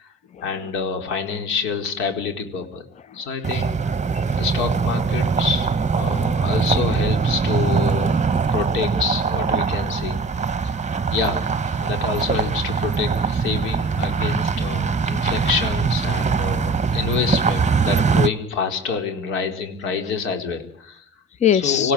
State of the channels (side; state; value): both; normal; correlation 0.42